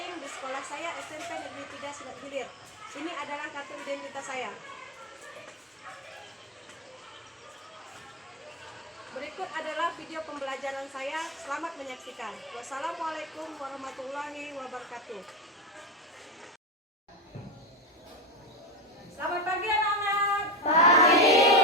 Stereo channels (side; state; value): both; normal; correlation 0.16